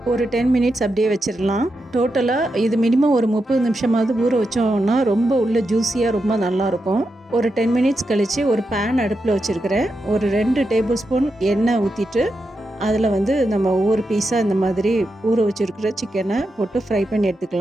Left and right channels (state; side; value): normal; both; correlation 0.87